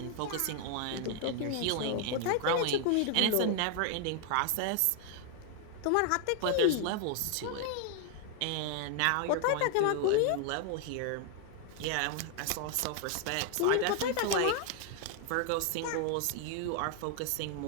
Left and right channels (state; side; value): different; both; correlation 0.00